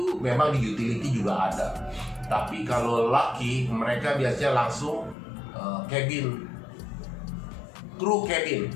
memang di utility juga ada. Tapi kalau laki mereka biasanya langsung cabin, kru cabin.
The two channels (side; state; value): right; drops out; at 5.2 s